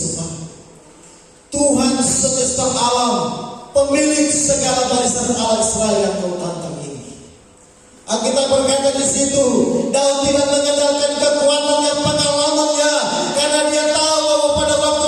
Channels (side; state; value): both; identical; correlation 1.00